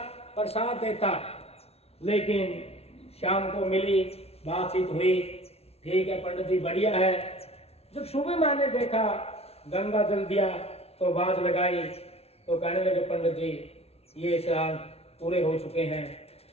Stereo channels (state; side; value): late; right; 0.30 ms